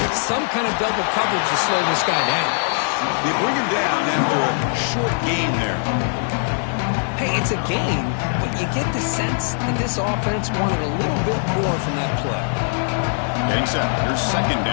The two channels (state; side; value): silent; right; 65 dB below the other